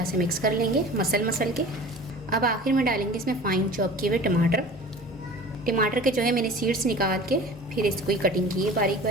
से मिक्स कर लेंगे मसल के। अब आखिर में डालेंगे इसमें फ़ाइन चॉप किए हुए टमाटर के जो है मैंने सीड्स निकाल के फिर इसको ही कटिंग की है बारीक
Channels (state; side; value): normal; both; correlation 0.41